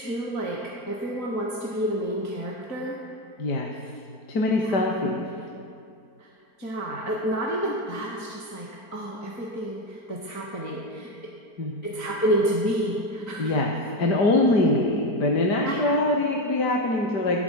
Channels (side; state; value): right; late; 4.4 ms